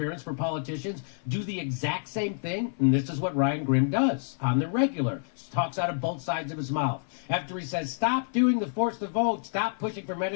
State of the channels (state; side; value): silent; right; 56 dB below the other